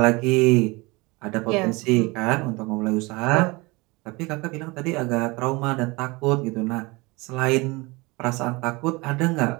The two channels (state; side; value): quieter; left; 24.6 dB